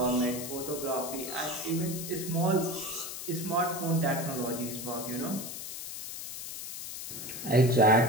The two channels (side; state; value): left; noise; hiss, 8 dB below the sound